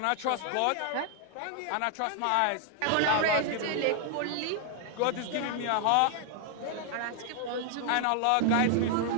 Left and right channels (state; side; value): different; both; correlation 0.00